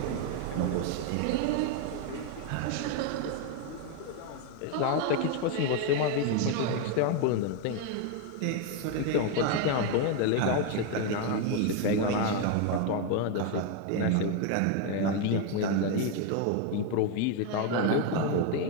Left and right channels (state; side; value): different; both; correlation 0.01